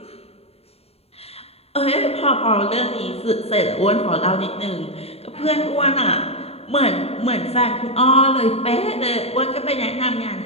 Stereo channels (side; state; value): right; late; 0.29 ms